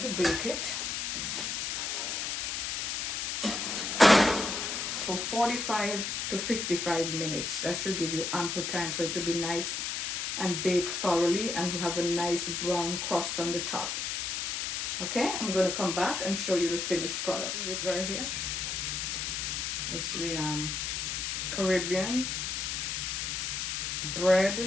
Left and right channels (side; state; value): left; noise; hiss, 2 dB below the sound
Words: bake it for 45 to 55 minutes. That should give you ample time for it to be nice and baked thoroughly and have a nice brown crust on the top. Okay, I'm going to come back and show you the finished product. This is it right here. It's the Caribbean